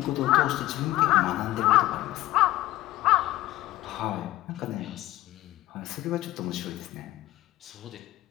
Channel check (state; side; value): quieter; right; 16.1 dB